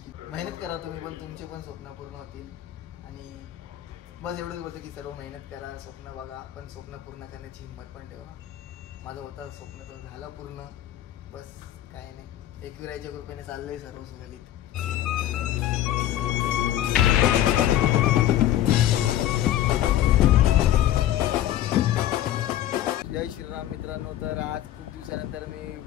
मेहनत करा तुम्ही पण, तुमचे पण स्वप्न पूर्ण होतील. आणि बस एवढंच बोलतं की सर्व मेहनत करा, स्वप्न बघा, पण स्वप्न पूर्ण करण्याची हिंमत पण ठेवा. माझं होतं स्वप्न तर झालं पूर्ण. बस काय नाही, एकविराईच्या कृपेने चाललंय सर्व सुरळीत. जय श्रीराम मित्रांनो. तर आज खूप दिवसानंतर मी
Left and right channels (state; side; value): quieter; right; 12.6 dB